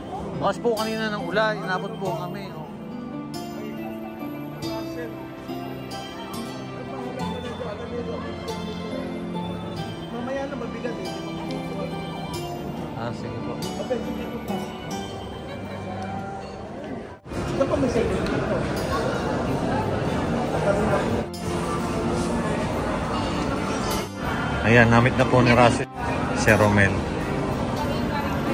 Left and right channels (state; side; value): identical; both; correlation 1.00